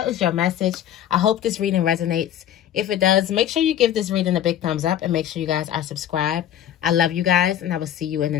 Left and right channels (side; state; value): right; quieter; 10.7 dB